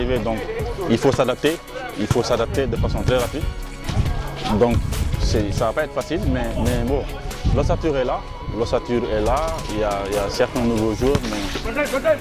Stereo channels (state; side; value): identical; both; correlation 1.00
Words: Donc, il faut s'adapter de façon très rapide. Donc, ça ne va pas être facile, mais bon, l'ossature est là. Il y a certains nouveaux joueurs, mais